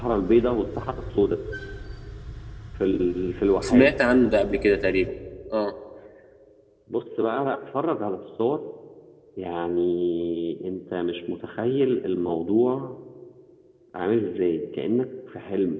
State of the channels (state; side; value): identical; both; correlation 1.00